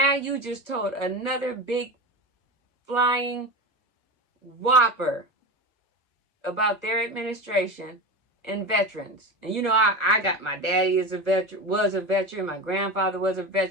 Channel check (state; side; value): late; right; 1.4 ms